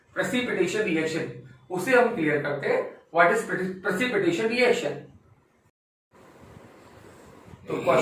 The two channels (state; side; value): identical; both; correlation 1.00